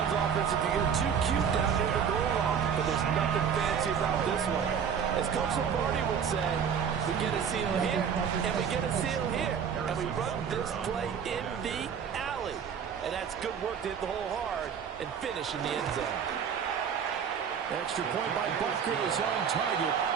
offensive can get too cute down near the goal line, but there's nothing fancy about this one. As Coach Lombardi would say, we get a seal here, and we get a seal here, and we run this play in the alley. And that's good work to hit the hole hard and finish in the end zone. Extra point by Butker is on target.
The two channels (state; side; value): quieter; left; 7.4 dB